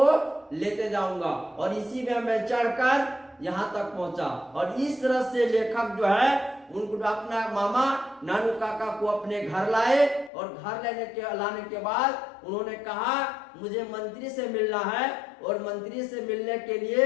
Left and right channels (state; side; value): drops out; right; at 10.3 s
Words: लेते जाऊंगा, और इसी में मैं चढ़कर यहाँ तक पहुंचा। और इस तरह से लेखक जो है उनको अपना मामा नानू काका को अपने घर लाए, और घर लाने के बाद उन्होंने कहा मुझे मंत्री से मिलना है, और मंत्री से मिलने के